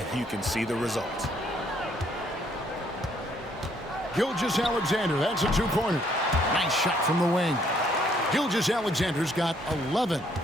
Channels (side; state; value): both; normal; correlation 0.67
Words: you can see the results. Gilgeous-Alexander, that's a 2-pointer. Nice shot from the wing. Gilgeous-Alexander's got 11